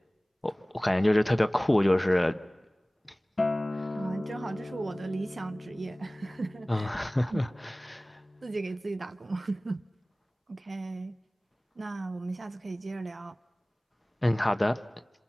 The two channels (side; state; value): both; normal; correlation 0.98